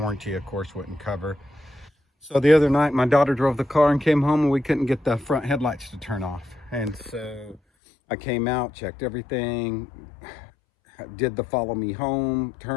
of course, wouldn't cover. So the other night, my daughter drove the car and came home and we couldn't get the front headlights to turn off. And so I came out, checked everything, did the follow me home,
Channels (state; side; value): drops out; right; at 7.6 s